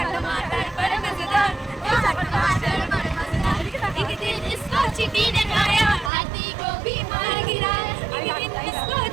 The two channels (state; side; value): drops out; left; at 6.1 s